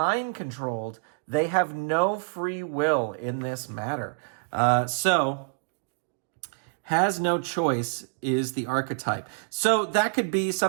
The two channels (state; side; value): silent; left; digital silence